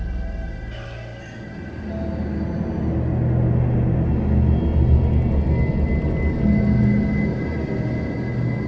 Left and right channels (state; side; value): identical; both; correlation 1.00